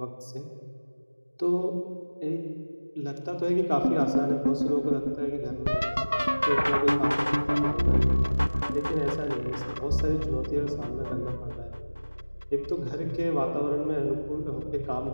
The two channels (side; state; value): both; inverted; correlation -1.00